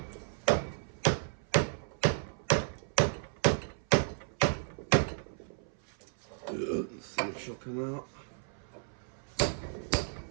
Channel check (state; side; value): silent; left; 56 dB below the other